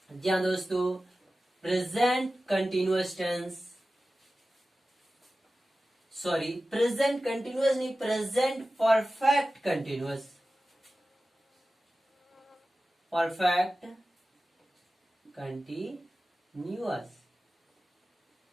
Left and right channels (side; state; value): both; normal; correlation 0.95